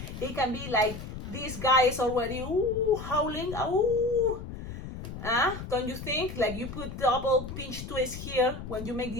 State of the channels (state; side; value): noise; left; rumble, 10 dB below the sound